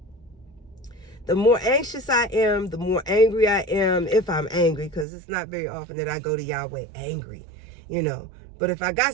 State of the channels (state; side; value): drops out; left; at 5.1 s